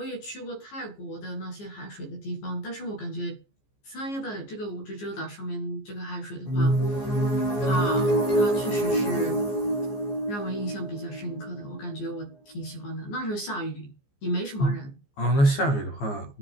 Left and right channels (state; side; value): late; right; 14 ms